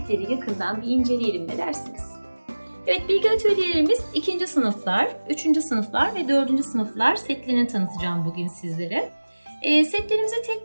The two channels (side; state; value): both; inverted; correlation -1.00